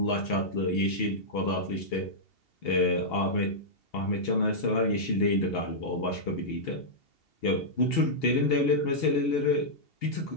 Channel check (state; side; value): late; right; 2.7 ms